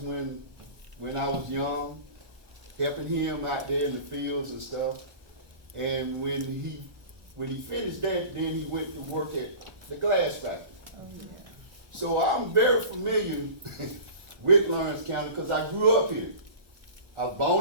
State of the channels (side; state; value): left; late; 1.2 ms